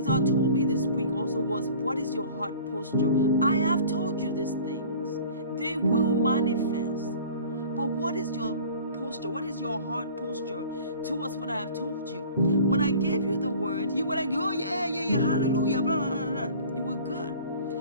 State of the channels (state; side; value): inverted; both; correlation -0.45